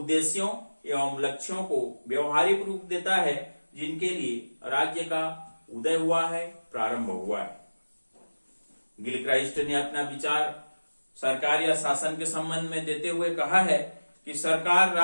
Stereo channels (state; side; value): inverted; both; correlation -1.00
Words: एवं लक्ष्यों को व्यवहारिक रूप देता है जिनके लिए राज्य का उदय हुआ है, प्रारंभ हुआ है। गिलक्राइस्ट ने अपना विचार सरकार या शासन के संबंध में देते हुए कहा है कि सरकार